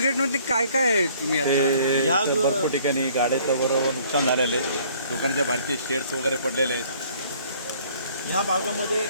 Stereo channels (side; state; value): both; inverted; correlation -0.58